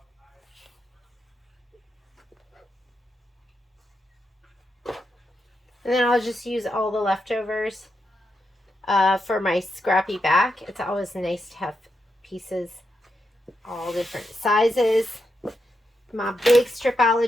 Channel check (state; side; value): normal; both; correlation 0.84